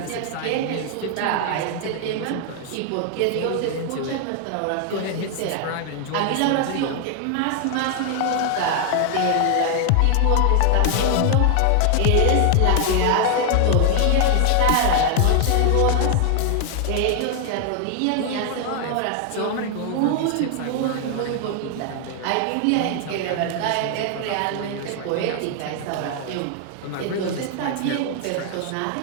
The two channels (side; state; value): both; different; correlation 0.00